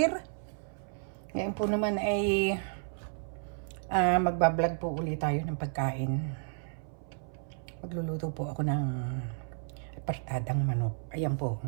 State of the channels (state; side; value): silent; left; 56 dB below the other